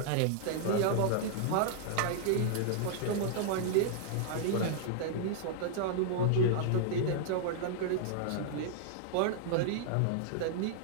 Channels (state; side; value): different; both; correlation -0.01